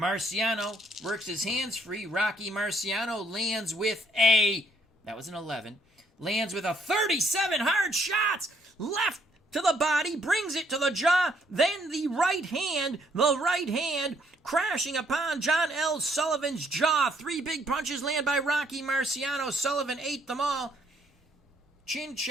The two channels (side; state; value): both; normal; correlation 0.68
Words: works his hands free. Rocky Marciano lands with that was an 11. Lands with a 37. Hard shots. Left to the body, brings it to the jaw, then the right hand crashing upon John L. Sullivan's jaw. 3 big punches land by Rocky Marciano. Sullivan ate them all. Chin